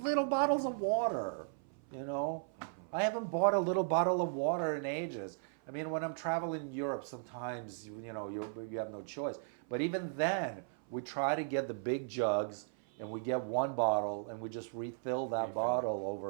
bottles of water. I haven't bought a little bottle of water in ages. I mean, when I'm traveling in Europe, sometimes you have no choice. But even then, we try to get the big jugs, and we get one bottle, and we just refill that Refill it. bottle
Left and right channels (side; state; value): left; silent; 54 dB below the other